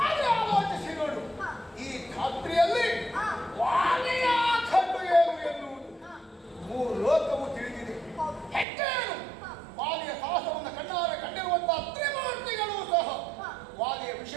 ಆದರೆ ಆಲೋಚಿಸಿ ನೋಡು, ಈ ಖಾತ್ರಿಯಲ್ಲಿ ವಾಲಿಯ ಖಂಡು ಏನು ಎನ್ನುವುದು ಮೂರು ಲೋಕವು ತಿಳಿದಿದೆ. ಹೆಚ್ಚೇನು ವಾಲಿಯ ಸಾಹಸವನ್ನು ಕಣ್ಣಾರೆ ಕಂಡಿರುವಂತಹ ತ್ರಿಮೂರ್ತಿಗಳು ಸಹ ವಾಲಿಯ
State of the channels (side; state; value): left; drops out; at 8.7 s